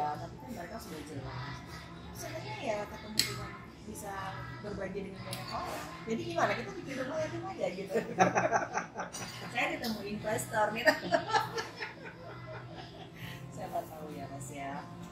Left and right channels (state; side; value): identical; both; correlation 1.00